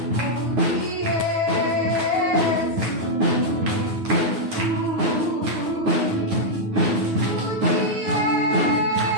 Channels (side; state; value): left; late; 9.4 ms